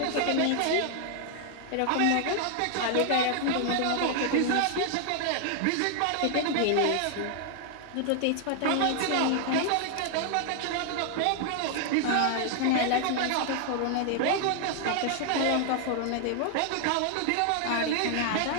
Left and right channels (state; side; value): different; both; correlation 0.00